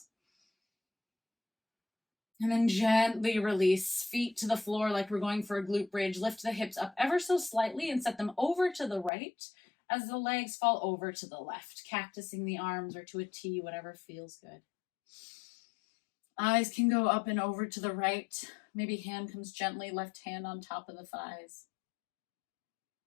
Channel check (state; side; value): drops out; right; at 9.1 s